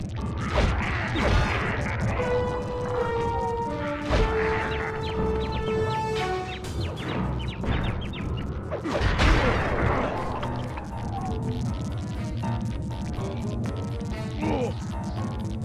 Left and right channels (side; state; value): both; identical; correlation 1.00